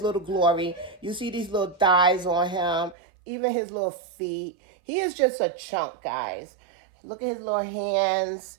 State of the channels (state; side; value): drops out; left; at 3.0 s